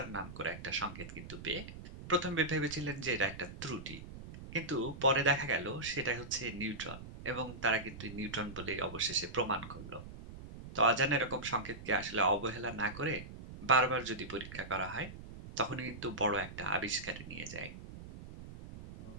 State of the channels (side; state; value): right; noise; rumble, 13 dB below the sound